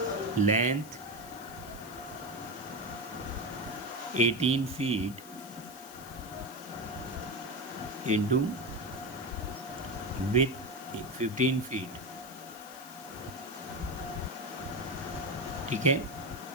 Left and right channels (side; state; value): left; noise; hiss, 16 dB below the sound